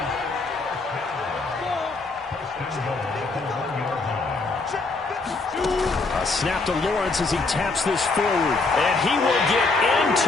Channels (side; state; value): right; quieter; 3.7 dB